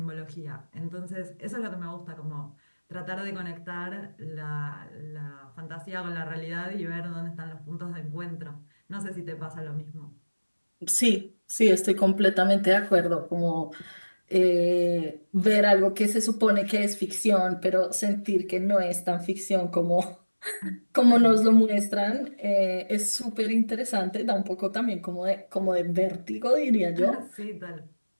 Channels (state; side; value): inverted; both; correlation -1.00